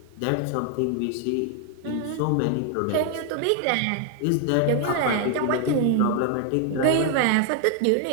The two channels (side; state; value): both; different; correlation 0.00